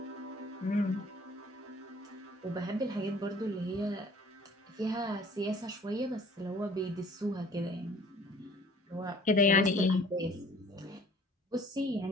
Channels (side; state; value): both; normal; correlation 0.53